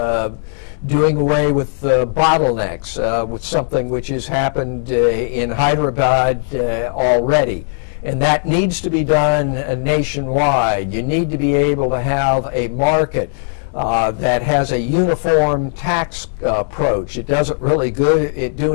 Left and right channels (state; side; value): silent; right; 68 dB below the other